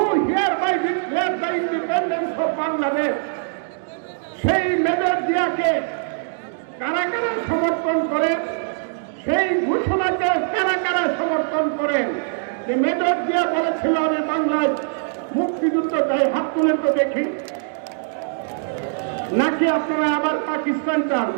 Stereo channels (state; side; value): silent; left; digital silence